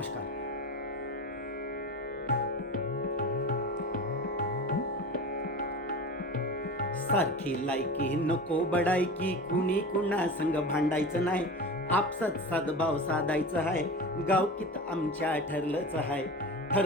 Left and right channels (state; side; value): normal; both; correlation 0.31